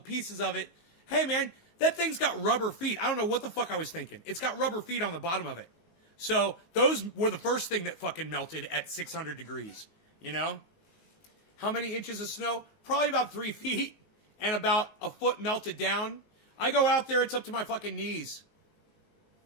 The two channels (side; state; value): right; late; 19 ms